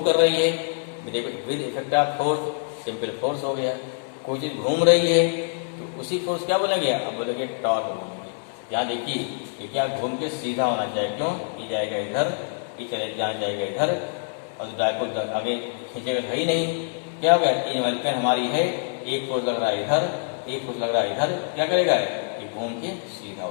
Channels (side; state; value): right; silent; digital silence